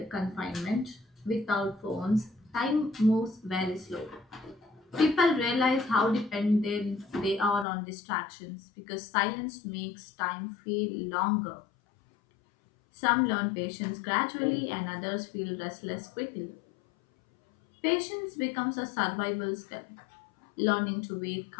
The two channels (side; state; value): right; drops out; at 7.7 s